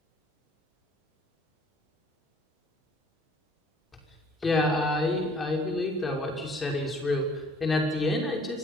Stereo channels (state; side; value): normal; both; correlation 0.56